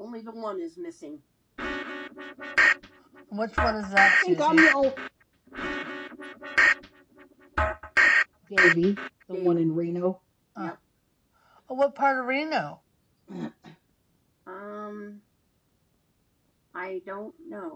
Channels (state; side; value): identical; both; correlation 1.00